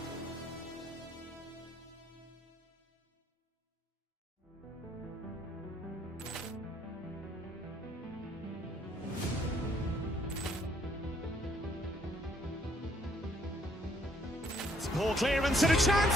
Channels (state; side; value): normal; both; correlation 0.66